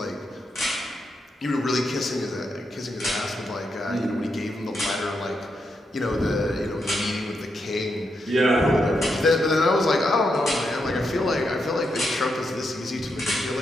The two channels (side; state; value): both; normal; correlation 0.83